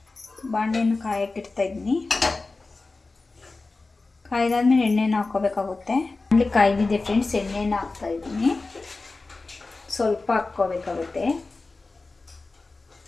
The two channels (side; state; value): right; quieter; 3.6 dB